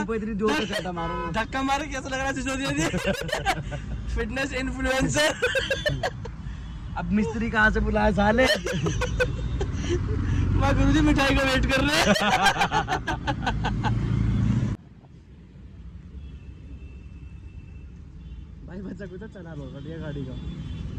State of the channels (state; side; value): identical; both; correlation 1.00